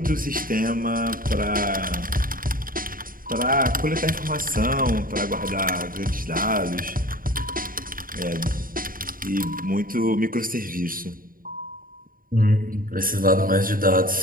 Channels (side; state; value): left; late; 0.41 ms